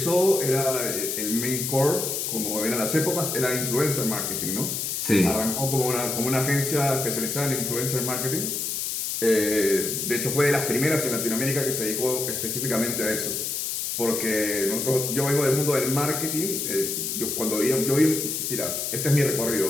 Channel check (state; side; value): noise; left; hiss, 2 dB below the sound